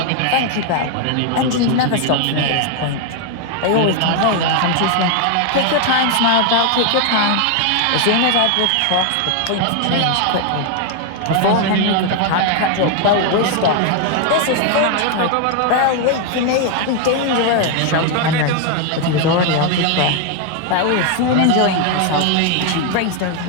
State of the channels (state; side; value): different; both; correlation 0.00